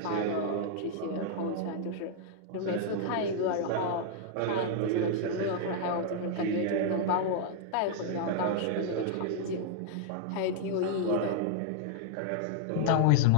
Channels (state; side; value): different; both; correlation 0.00